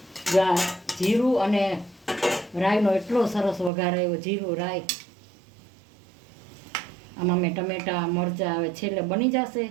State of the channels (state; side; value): drops out; left; at 3.7 s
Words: જ્યાં જીરું અને રાઈનો એટલો સરસ વઘાર આવ્યો। જીરું રાઈ આમાં મેં ટમેટાં મરચાં હવે છેલ્લે બની જશે